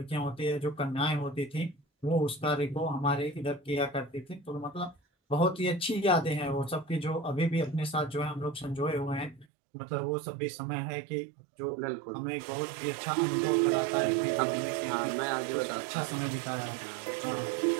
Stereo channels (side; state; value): left; drops out; at 9.5 s